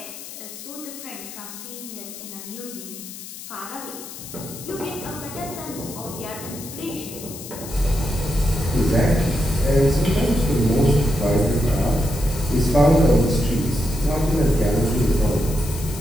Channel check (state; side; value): noise; left; hiss, 12 dB below the sound